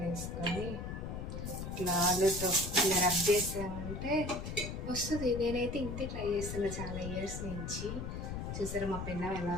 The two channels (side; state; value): left; noise; rumble, 5 dB below the sound